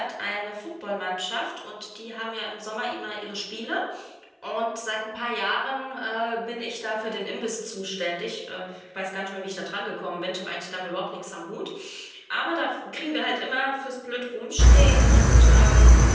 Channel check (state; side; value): identical; both; correlation 1.00